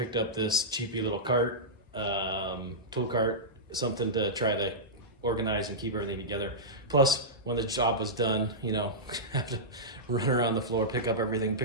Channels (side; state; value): both; normal; correlation -0.13